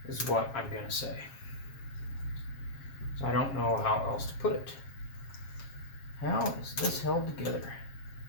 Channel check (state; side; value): late; right; 7.4 ms